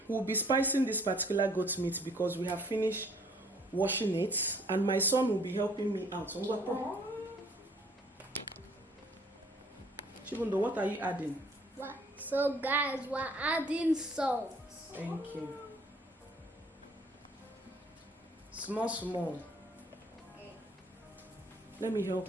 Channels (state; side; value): normal; both; correlation 0.59